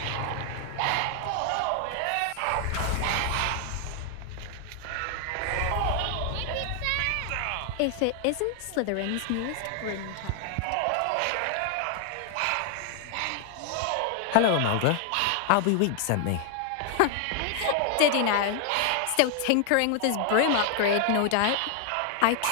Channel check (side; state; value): both; different; correlation 0.00